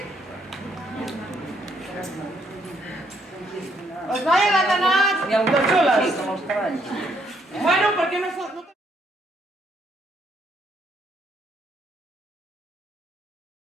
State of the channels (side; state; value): both; normal; correlation 0.72